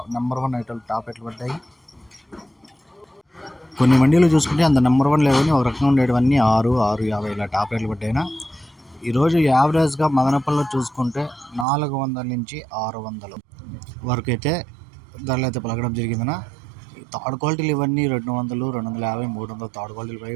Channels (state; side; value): drops out; left; at 11.7 s